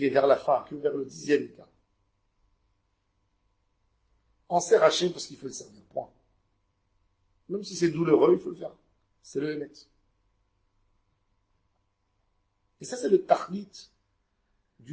est vers la fin, que vers le 10e état. On sert Hachem parce qu'il faut le servir, point. Même si c'est douloureux, il faut le faire. C'est le Hémet. Et ça, c'est le Tachlit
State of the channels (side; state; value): both; identical; correlation 1.00